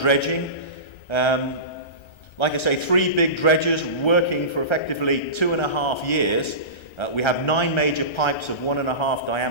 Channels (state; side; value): late; right; 1.3 ms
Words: Like I say, 3 big dredgers working for effectively 2.5 years. We have 9 major pipes of 1.5